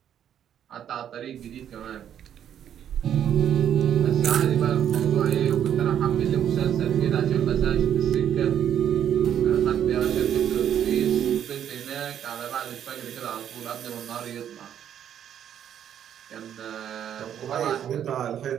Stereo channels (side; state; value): left; quieter; 9.7 dB